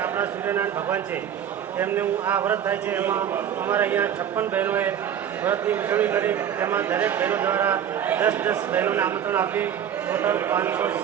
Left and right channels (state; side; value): quieter; left; 9.3 dB